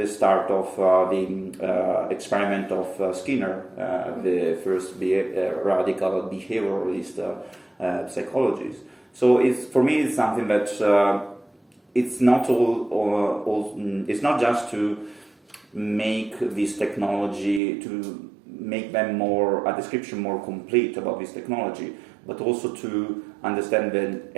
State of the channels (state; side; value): drops out; left; at 17.6 s